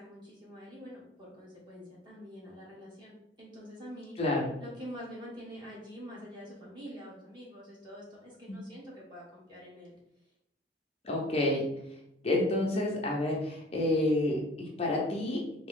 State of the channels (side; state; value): both; normal; correlation 0.46